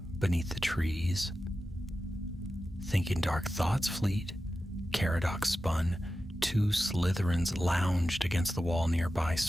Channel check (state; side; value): normal; both; correlation 0.93